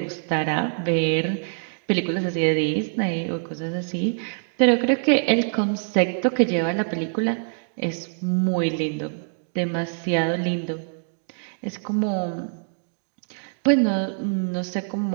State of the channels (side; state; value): left; silent; digital silence